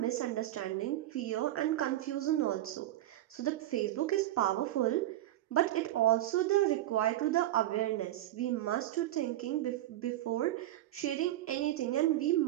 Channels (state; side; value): quieter; left; 14.3 dB